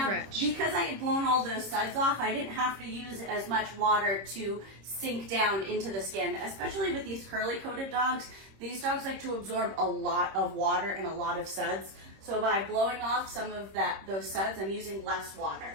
rich. Because I had blown all those suds off, I didn't have to use as much water to sink down into the skin, especially with these curly coated dogs. These dogs like to absorb a lot of water and a lot of suds. So by blowing off some of those suds, I'm using less water.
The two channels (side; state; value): left; late; 26 ms